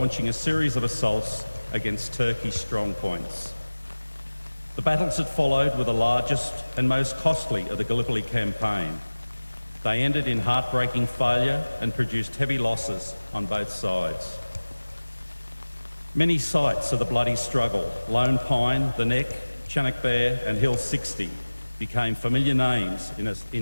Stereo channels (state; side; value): inverted; both; correlation -1.00